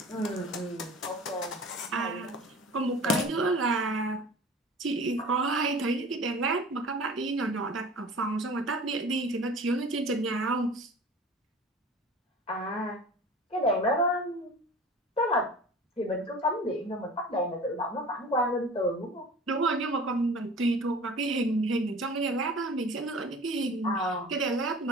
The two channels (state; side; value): normal; both; correlation 0.41